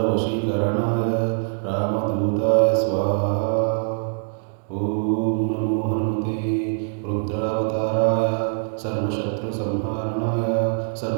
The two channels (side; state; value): left; silent; digital silence